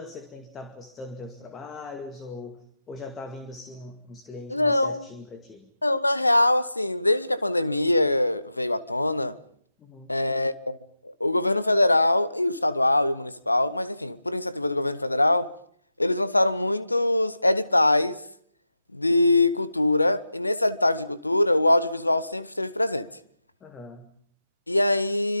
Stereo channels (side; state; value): both; inverted; correlation -0.92